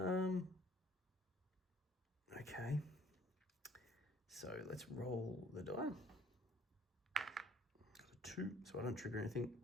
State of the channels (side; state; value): both; normal; correlation 0.58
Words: Okay. So let's roll the die. Got a 2, so I don't trigger anything.